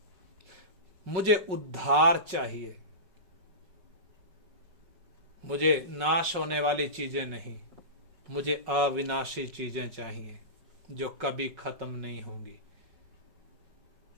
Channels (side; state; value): left; late; 5.4 ms